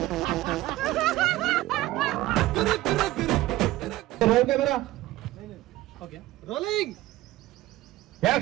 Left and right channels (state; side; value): quieter; left; 16.7 dB